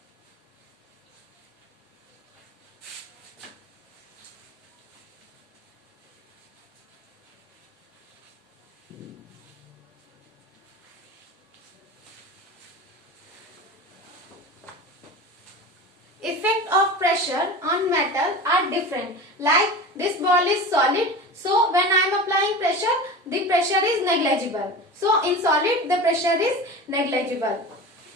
Effect of pressure on metal are different. Like this ball is solid, so when I am applying pressure, the pressure is negligible. So in solid, the pressure is negligible.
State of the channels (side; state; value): both; normal; correlation 0.32